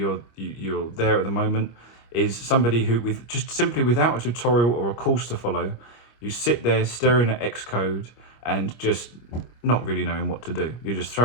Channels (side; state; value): right; late; 25 ms